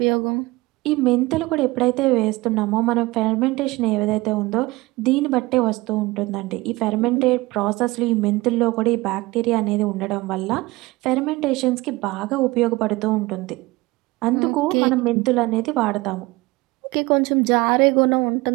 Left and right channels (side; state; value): left; quieter; 21.4 dB